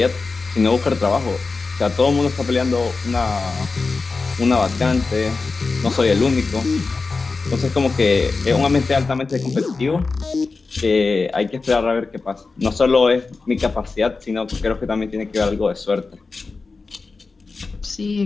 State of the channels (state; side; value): quieter; right; 4.1 dB